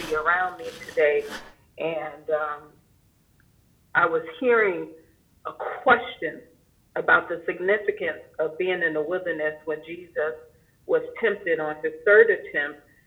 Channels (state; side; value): identical; both; correlation 1.00